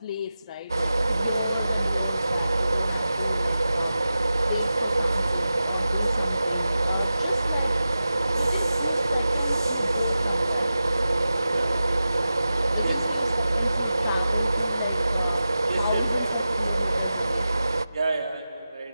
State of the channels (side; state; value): both; inverted; correlation -0.93